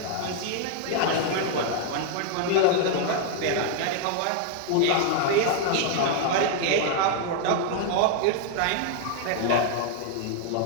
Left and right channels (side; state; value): both; different; correlation 0.00